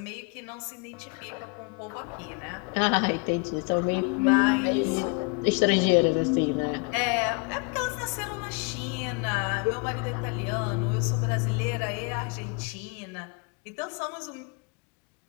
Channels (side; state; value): right; quieter; 32.3 dB